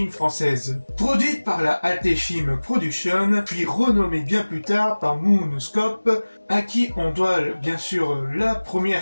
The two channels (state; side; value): inverted; both; correlation -1.00